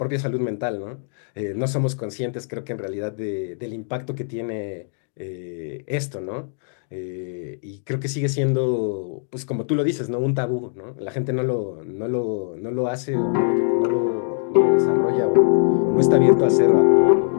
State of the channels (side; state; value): right; silent; digital silence